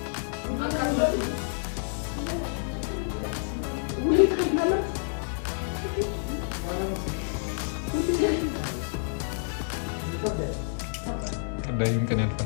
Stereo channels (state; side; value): silent; right; digital silence